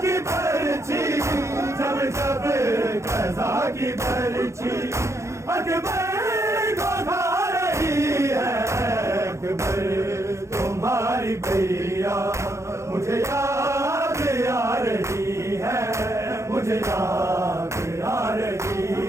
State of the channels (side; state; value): left; late; 0.14 ms